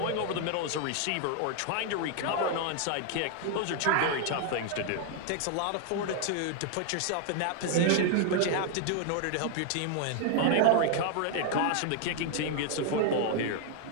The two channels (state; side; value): different; both; correlation 0.00